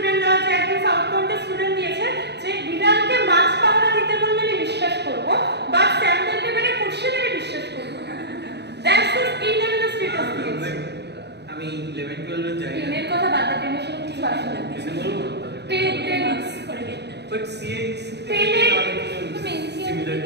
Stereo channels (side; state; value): left; late; 0.49 ms